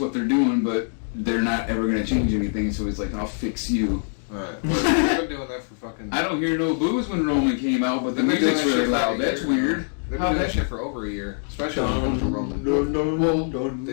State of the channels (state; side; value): silent; right; digital silence